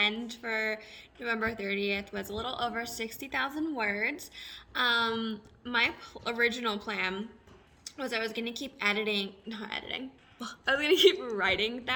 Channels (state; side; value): identical; both; correlation 1.00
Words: for November 30th was a little over 60,000 words. My original plan was I was going to keep I was going to keep writing